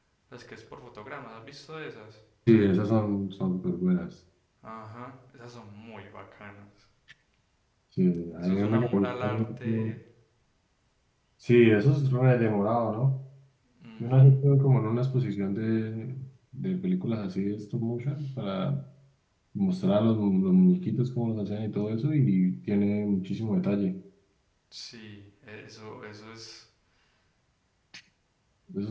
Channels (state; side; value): identical; both; correlation 1.00